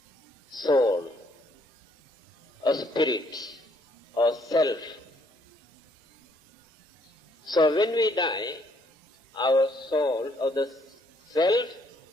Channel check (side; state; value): both; normal; correlation 0.68